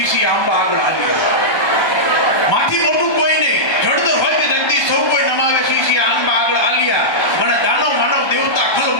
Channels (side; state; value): right; late; 1.3 ms